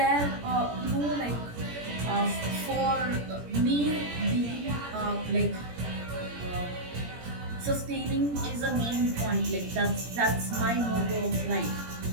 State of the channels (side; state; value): left; late; 17 ms